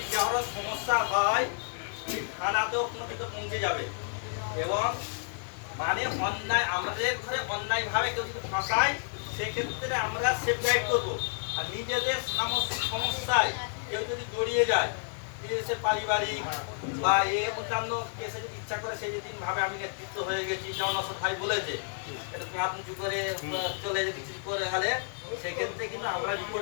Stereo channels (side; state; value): right; silent; digital silence